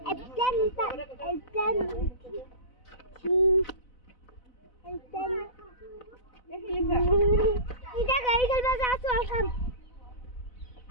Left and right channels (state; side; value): late; right; 4.0 ms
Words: aeroplane Ida gari kalba jaatu alkam.